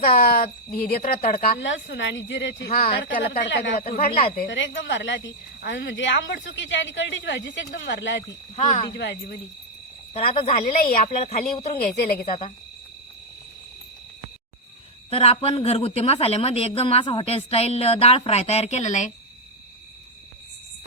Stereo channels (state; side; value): normal; both; correlation 0.00